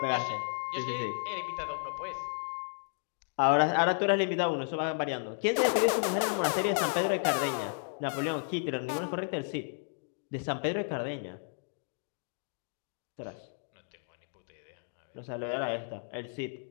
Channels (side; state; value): right; silent; 56 dB below the other